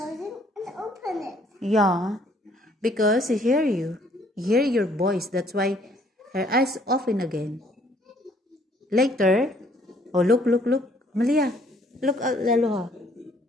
it and open it. Yeah. Because he hear you. He hear your voice. That's why her eyes open again. Later. Oh, look. Malia. Look at Laloha.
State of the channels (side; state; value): both; normal; correlation 0.62